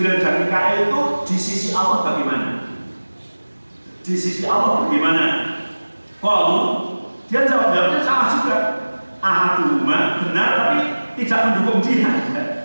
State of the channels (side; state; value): both; inverted; correlation -1.00